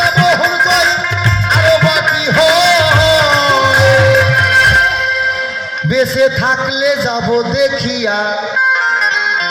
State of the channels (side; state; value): both; identical; correlation 1.00